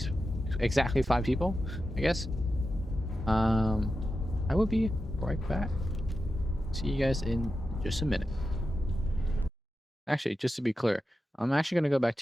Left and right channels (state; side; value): normal; both; correlation 0.90